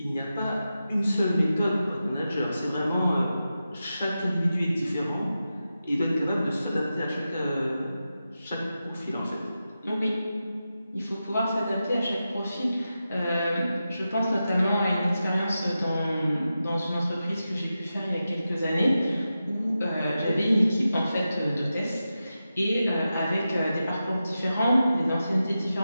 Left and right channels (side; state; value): both; inverted; correlation -0.91